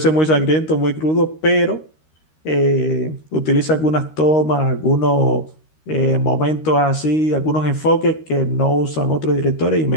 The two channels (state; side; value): late; right; 13 ms